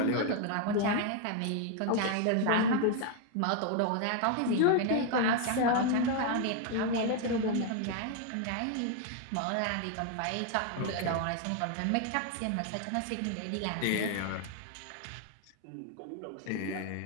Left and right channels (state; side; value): different; both; correlation 0.00